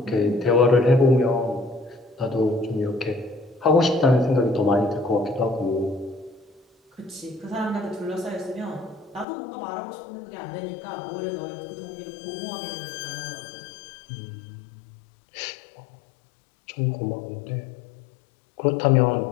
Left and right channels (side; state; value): right; drops out; at 9.2 s